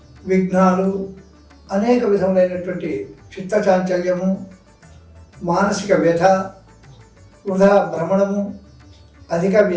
విఘ్నాలు, అనేక విధములైనటువంటి చిత్తచాంచల్యము, మానసిక వ్యధ, వృధా భ్రమణము, అధిక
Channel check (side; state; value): both; identical; correlation 1.00